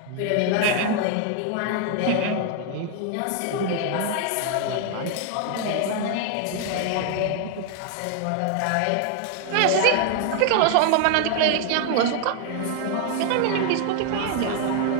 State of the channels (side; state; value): both; different; correlation 0.00